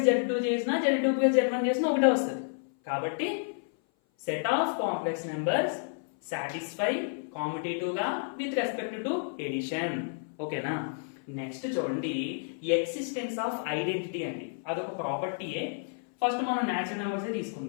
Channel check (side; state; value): right; silent; 56 dB below the other